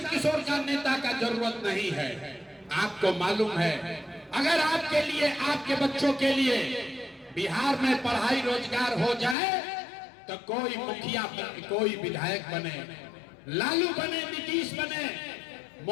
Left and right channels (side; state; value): right; drops out; at 9.3 s